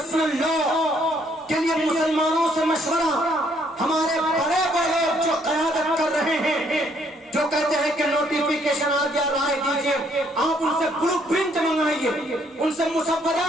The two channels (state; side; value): normal; both; correlation 0.68